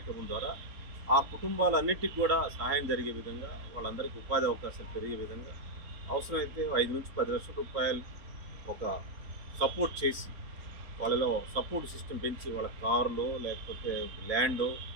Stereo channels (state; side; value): late; left; 3.9 ms